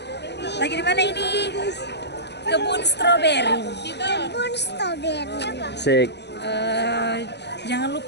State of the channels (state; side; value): late; right; 0.50 ms